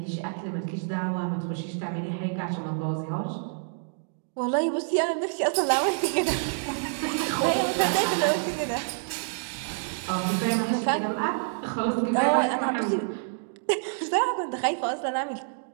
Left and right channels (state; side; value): silent; left; digital silence